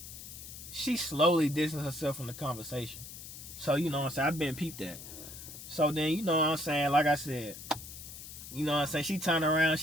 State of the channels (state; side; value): noise; left; hiss, 12 dB below the sound